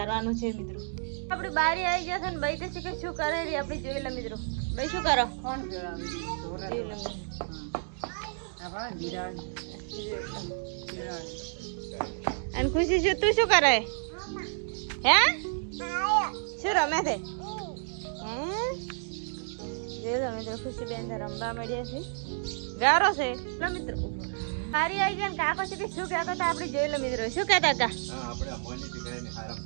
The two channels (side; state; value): left; silent; digital silence